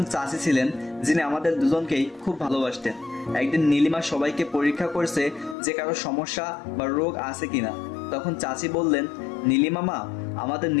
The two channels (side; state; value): right; drops out; at 5.6 s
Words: চাচি ছিলেন যিনি আমাদের দুজনকেই খুব ভালোবাসতেন। একদিন নীলিমা সবাইকে পরীক্ষা করছে যে কারো সমস্যা বা রোগ আছে কিনা। তখন চাচি বললেন, নীলিমা মা, আমাদের